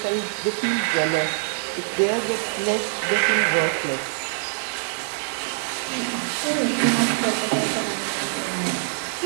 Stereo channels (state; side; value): silent; left; digital silence